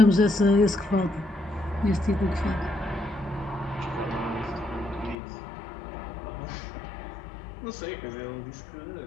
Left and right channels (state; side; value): drops out; right; at 5.2 s